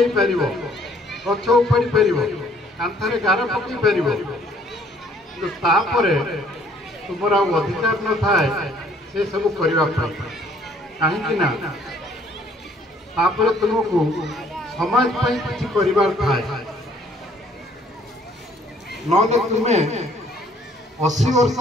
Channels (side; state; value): both; normal; correlation 0.61